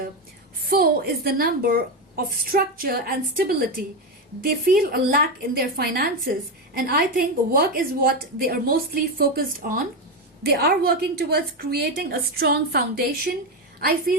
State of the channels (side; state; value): both; normal; correlation 0.12